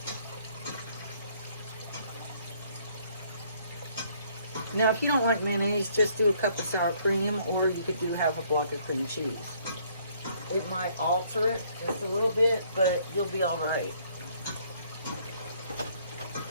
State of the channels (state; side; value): inverted; both; correlation -0.64